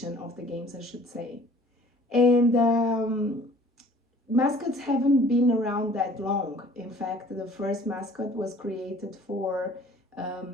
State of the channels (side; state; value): both; normal; correlation 0.52